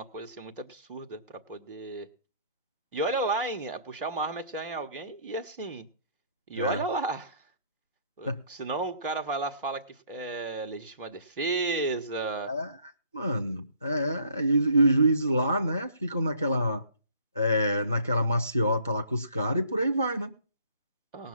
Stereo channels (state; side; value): inverted; both; correlation -0.60